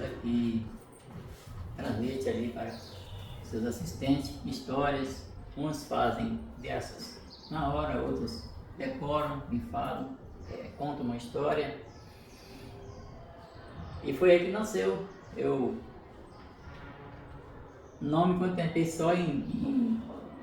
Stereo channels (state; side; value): identical; both; correlation 1.00